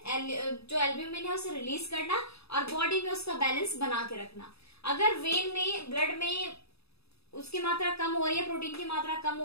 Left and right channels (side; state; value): right; late; 0.78 ms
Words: जो एल्ब्यूमिन है उसे रिलीज करना और बॉडी में उसका बैलेंस बना के रखना। अगर वेन में, ब्लड में उसकी मात्रा कम हो रही है, प्रोटीन की मात्रा कम